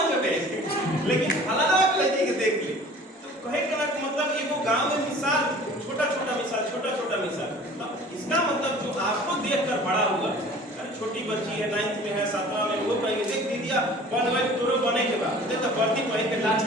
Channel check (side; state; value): both; normal; correlation 0.46